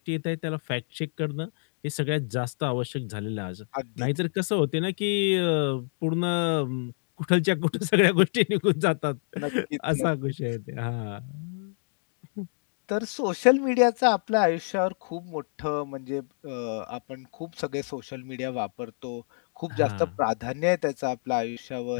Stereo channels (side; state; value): right; silent; digital silence